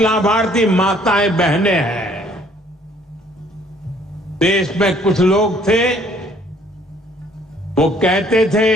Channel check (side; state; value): both; normal; correlation 0.60